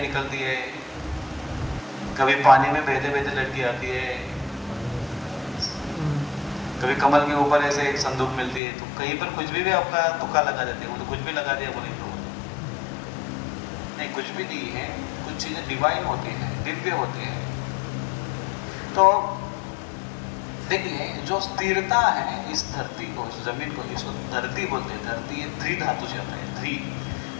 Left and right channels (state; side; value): drops out; right; at 8.6 s